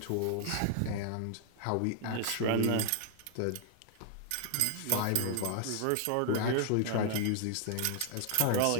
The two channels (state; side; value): different; both; correlation 0.00